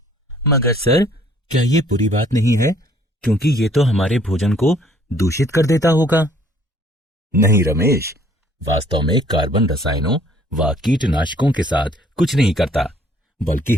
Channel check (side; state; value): both; normal; correlation 0.60